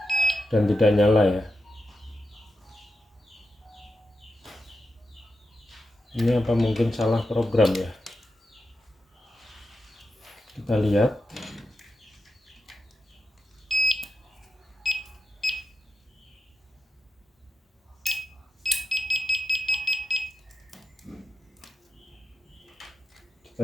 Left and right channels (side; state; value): both; normal; correlation 0.89